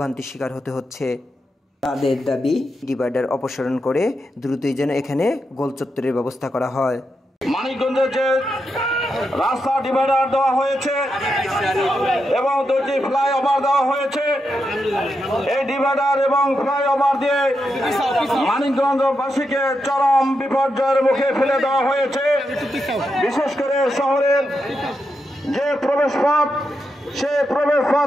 শিকার হতে হচ্ছে। তাদের দাবি, ডিভাইডার অপসারণ করে দ্রুতই যেন এখানে গোলচত্বরের ব্যবস্থা করা হয়। মানিকগঞ্জে যে রাস্তা ডিভাইডার দেওয়া হয়েছে এবং দুটি ফ্লাইওভার দেওয়া হয়েছে, এই ডিভাইডার এবং ফ্লাইওভার দিয়ে মানিকগঞ্জবাসীকে চরম বিপর্যয়ের মুখে ফেলে দেওয়া হয়েছে। বিশেষ করে শহরের যে প্রবেশপথ, সেই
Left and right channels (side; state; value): both; normal; correlation 0.85